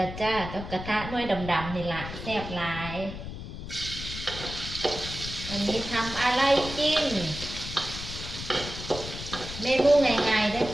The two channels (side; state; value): left; noise; rumble, 9 dB below the sound